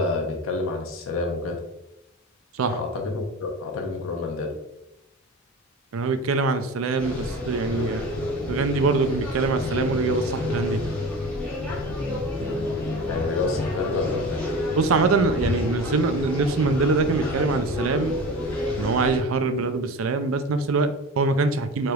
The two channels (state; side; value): normal; both; correlation 0.32